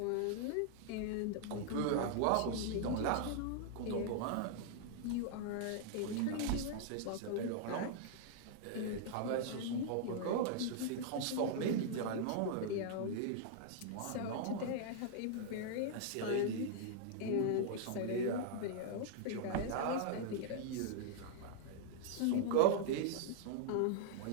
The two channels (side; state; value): both; different; correlation -0.01